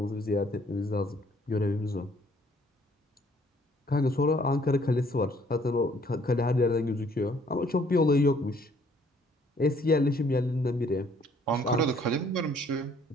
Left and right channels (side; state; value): both; normal; correlation 0.62